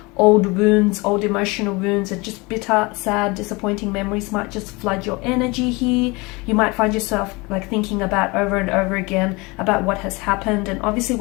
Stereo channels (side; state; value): right; quieter; 25.6 dB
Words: old wounds, old emotional wounds, and just bitter, sad, disappointing memories might just flood your energy here. You might find yourself like thinking about over and over again about what has happened, and obviously